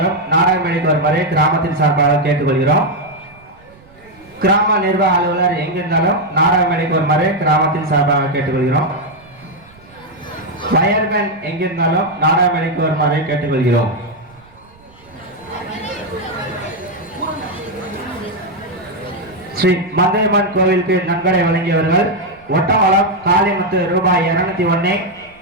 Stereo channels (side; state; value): right; noise; rumble, 27 dB below the sound